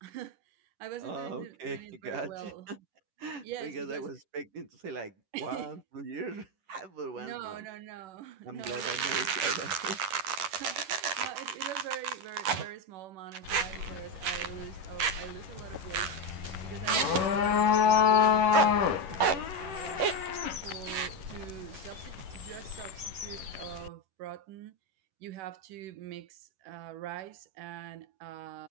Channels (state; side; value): late; left; 11 ms